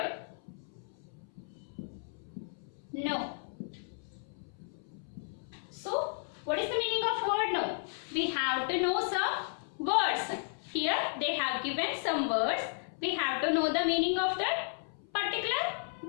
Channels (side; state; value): right; silent; 55 dB below the other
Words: no. So, what is the meaning of word no? We have to know some words. Here, they have given some words. We have to know the meaning of that